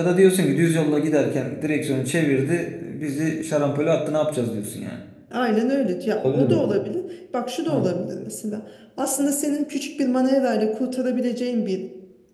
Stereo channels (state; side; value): identical; both; correlation 1.00